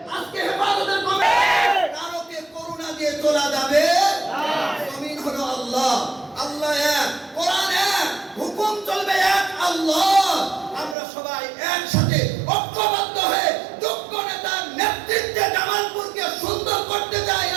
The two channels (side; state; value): left; drops out; at 11.0 s